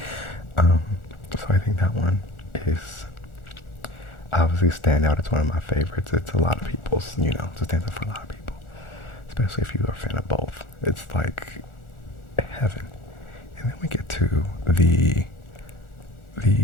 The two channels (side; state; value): right; late; 1.4 ms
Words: So I think that one is obviously stand out. It's one of my favorites. It's a lot of people's, you know, it stands out for a lot of people, especially if you are a fan of both. It's like heaven. And then we get to the